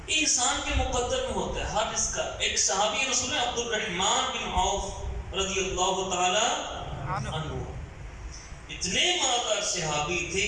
یہ انسان کے مقدر میں ہوتا ہے ہر اس کا. ایک صحابی رسول عبد الرحمن بن عوف رضی اللہ تعالی عنہ، اتنے مالدار صحابی تھے،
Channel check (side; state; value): both; identical; correlation 1.00